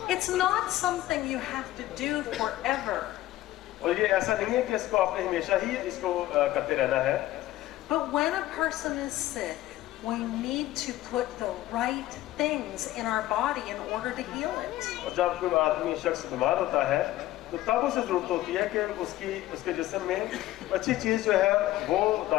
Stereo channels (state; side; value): quieter; right; 15.6 dB